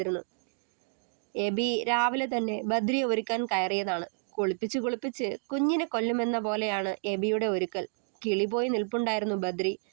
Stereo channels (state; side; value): silent; left; digital silence